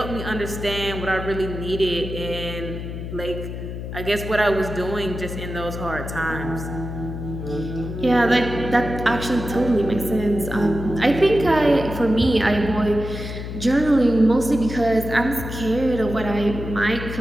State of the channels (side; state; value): left; noise; hum, 7 dB below the sound